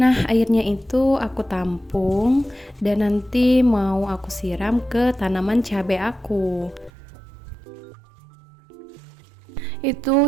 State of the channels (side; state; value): left; drops out; at 6.9 s